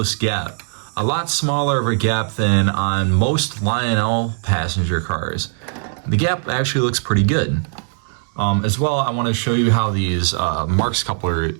gap. A lot smaller of a gap than on most Lionel passenger cars. The gap actually looks pretty good. As well, I want to show you how these Marx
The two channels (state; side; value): silent; left; digital silence